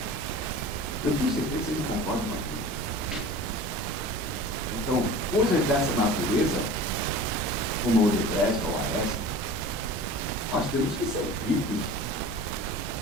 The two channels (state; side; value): normal; both; correlation 0.39